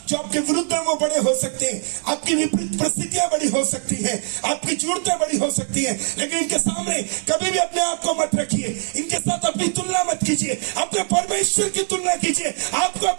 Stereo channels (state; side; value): silent; left; 64 dB below the other